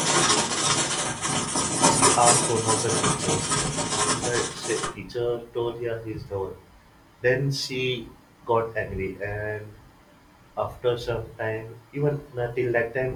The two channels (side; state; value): both; identical; correlation 1.00